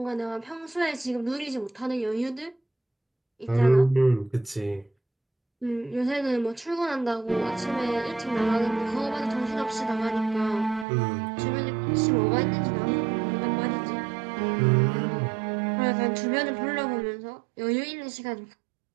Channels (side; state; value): left; drops out; at 10.9 s